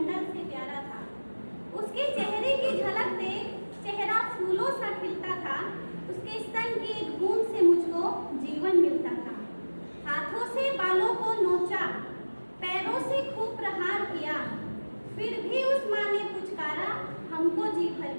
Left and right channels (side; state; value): both; inverted; correlation -1.00